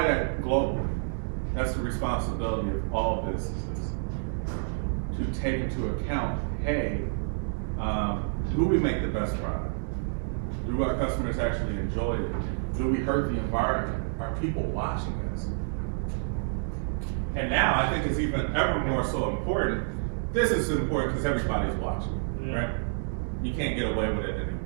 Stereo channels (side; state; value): left; silent; digital silence